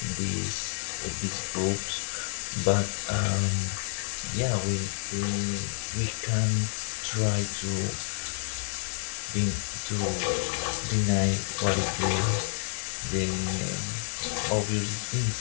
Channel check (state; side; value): silent; right; digital silence